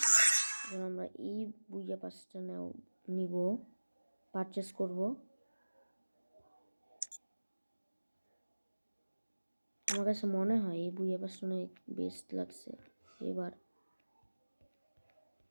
আমরা এই বুইয়া পাসটা নিব, পারচেস করব। আমার কাছে মনে হয় এই বুইয়া পাসটা অনেক বেস্ট লাগছে এবার।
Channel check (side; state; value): both; inverted; correlation -1.00